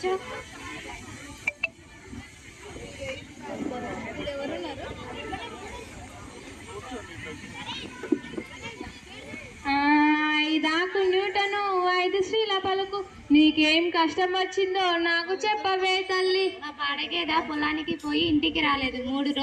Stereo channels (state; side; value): identical; both; correlation 1.00